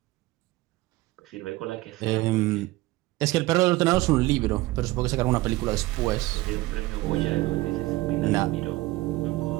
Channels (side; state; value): left; quieter; 19.4 dB